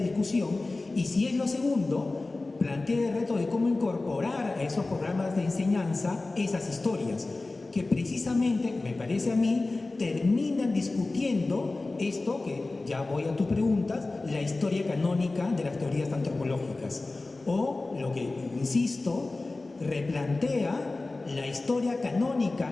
y si es lo segundo, plantea el reto de cómo incorporar a esos programas de enseñanza esas historias, que precisamente, me parece a mí, terminan discutiendo esto, que ya voy a tus preguntas, la historia canónica de las teorías antropológicas, o lo que, insisto, replantea la historia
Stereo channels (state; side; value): quieter; right; 3.2 dB